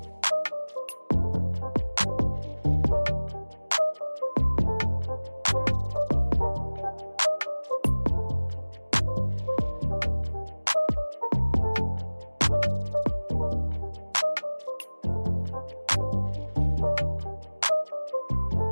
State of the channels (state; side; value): inverted; both; correlation -1.00